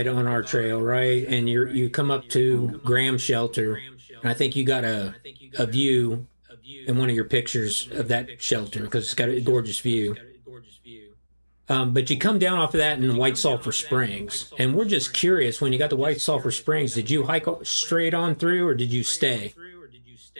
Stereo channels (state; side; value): inverted; both; correlation -1.00